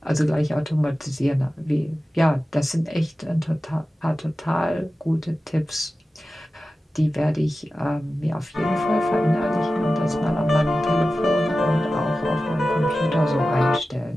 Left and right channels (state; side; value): normal; both; correlation 0.94